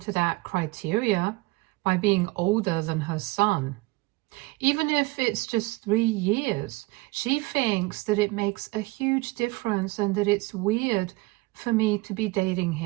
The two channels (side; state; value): left; quieter; 22.5 dB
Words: that criteria by being older than her son. Even if it's just 3 years, she thinks that it makes a huge difference and that it's weird for me to be dating